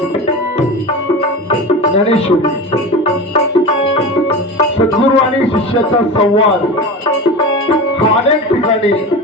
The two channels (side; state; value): both; normal; correlation 0.29